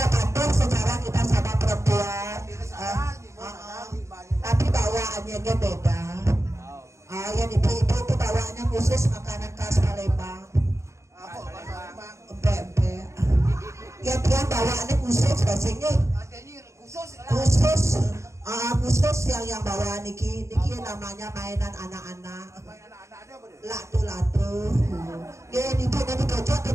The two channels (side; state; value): left; late; 0.14 ms